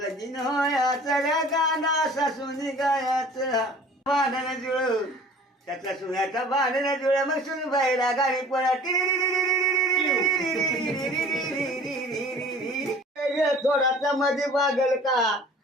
होयाच रे गाणं सासूनी गायाच भांडण जुळ त्याचा सुन्याचा भांडण जुळ मग सुनबाईला गाडी पळा थोडासा मध्ये वागल का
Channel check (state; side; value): normal; both; correlation 0.47